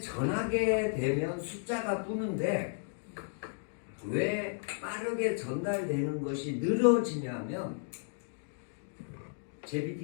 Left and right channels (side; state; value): right; silent; digital silence